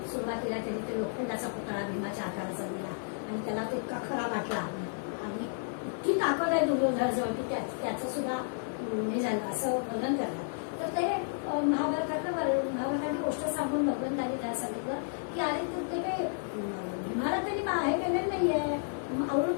सुरुवातीला त्यांनी ते लोखंडाचा पुतळा भीमाच्या आकाराचा दिला आणि त्याला तो इतका खरा वाटला आणि इतकी ताकद आहे दुर्योधनाजवळ की त्याचं सुद्धा हे झालं असं वर्णन करतात. तर ते महाभारतातली गोष्ट सांगून भगवंतांनी त्याला सांगितलं की अरे ते काही भीमाला त्यांनी हे केलेलं नाहीये,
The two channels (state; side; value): silent; right; 57 dB below the other